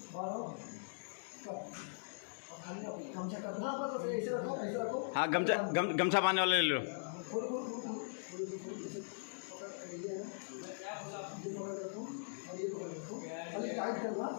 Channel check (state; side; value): silent; right; digital silence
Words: बारो कब खाली गमछा कर, हाँ बस ऐसे रखो ऐसे रखो। हाँ गमछा बांधने वाले ले लो। खोल खोल खोल टाइट करना